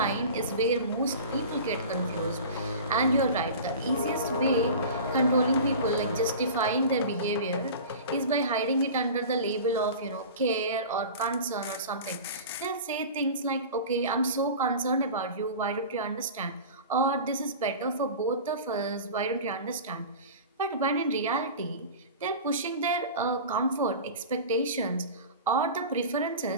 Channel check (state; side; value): inverted; both; correlation -0.35